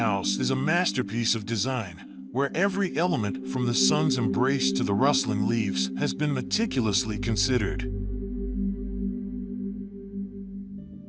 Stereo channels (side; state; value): both; identical; correlation 1.00